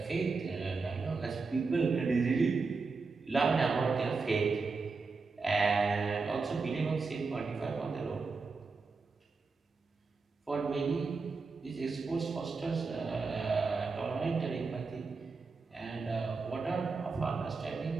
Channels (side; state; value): left; quieter; 4.4 dB